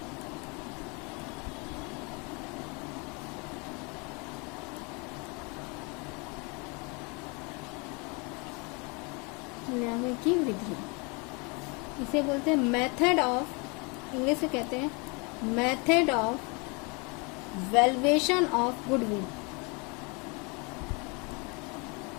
मूल्यांकन की विधि इसे बोलते हैं मेथड ऑफ, इंग्लिश में कहते हैं method of valuation of goodwill.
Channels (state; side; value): quieter; right; 30.7 dB